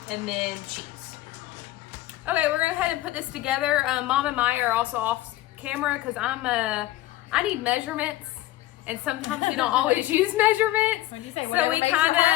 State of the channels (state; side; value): quieter; right; 16.2 dB